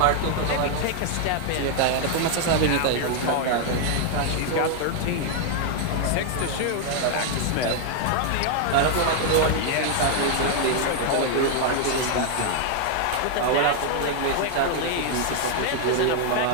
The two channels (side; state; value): both; different; correlation 0.00